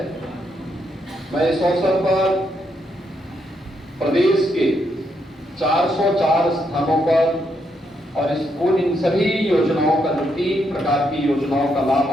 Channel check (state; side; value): normal; both; correlation 0.78